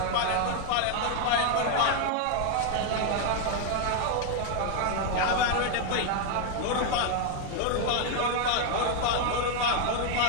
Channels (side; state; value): both; different; correlation 0.01